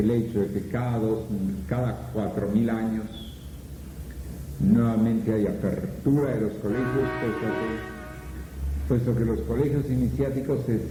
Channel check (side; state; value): both; identical; correlation 1.00